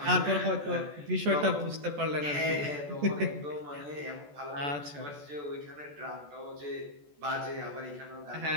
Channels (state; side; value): late; left; 14 ms